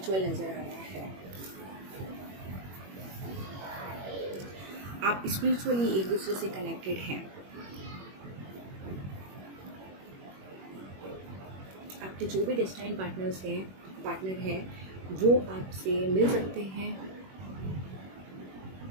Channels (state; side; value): late; left; 21 ms